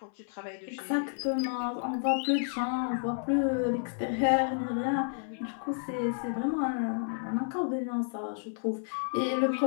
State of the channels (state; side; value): silent; right; 57 dB below the other